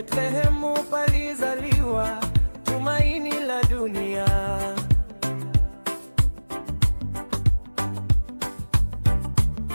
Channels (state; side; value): inverted; both; correlation -1.00